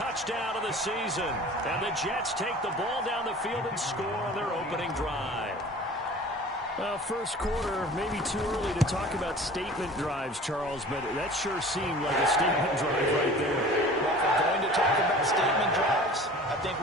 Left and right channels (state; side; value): normal; both; correlation 0.43